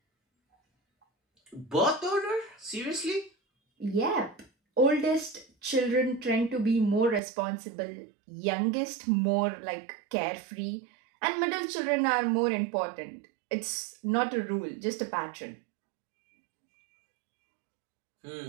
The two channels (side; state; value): left; drops out; at 7.2 s